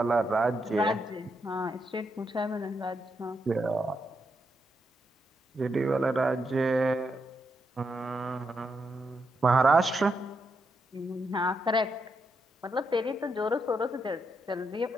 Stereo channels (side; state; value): both; normal; correlation 0.82